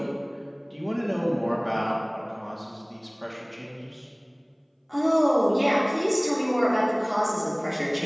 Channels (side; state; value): both; identical; correlation 1.00